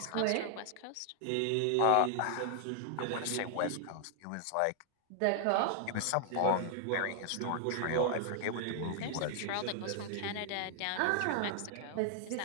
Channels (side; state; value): both; different; correlation 0.00